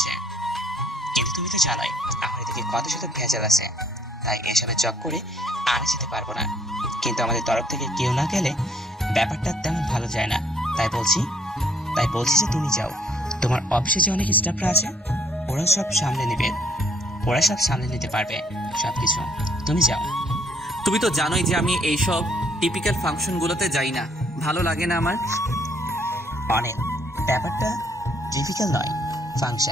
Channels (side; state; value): both; normal; correlation 0.65